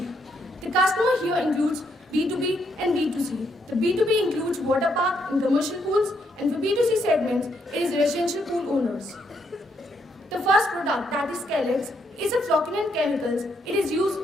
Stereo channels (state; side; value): normal; both; correlation 0.75